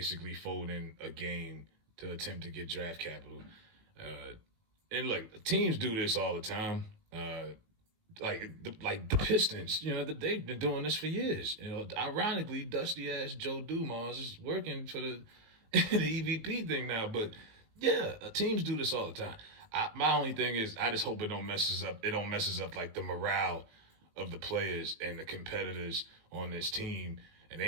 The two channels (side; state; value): left; late; 18 ms